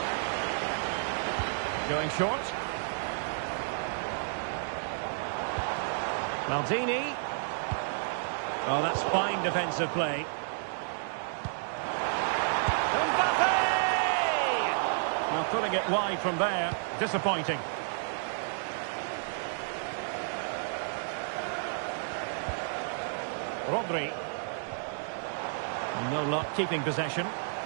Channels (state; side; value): silent; left; digital silence